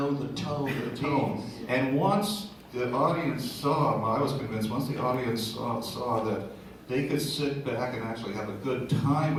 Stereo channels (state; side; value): identical; both; correlation 1.00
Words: the tone of the Tone. And once the audience saw, I was convinced, once the audience saw that they could sit back and actually have a good time